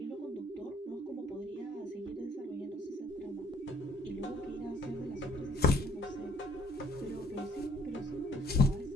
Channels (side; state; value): both; normal; correlation 0.61